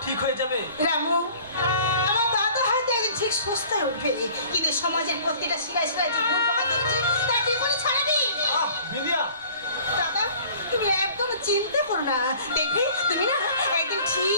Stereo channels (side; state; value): both; inverted; correlation -0.49